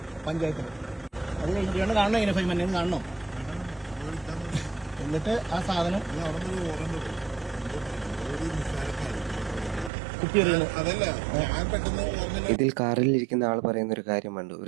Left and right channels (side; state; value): left; drops out; at 9.9 s